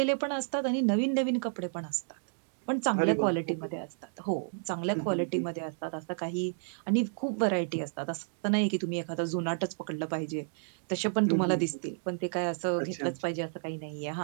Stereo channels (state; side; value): silent; left; digital silence